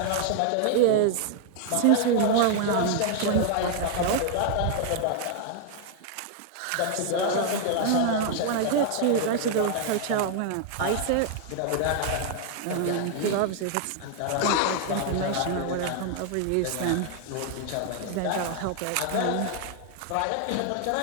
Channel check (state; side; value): different; both; correlation 0.00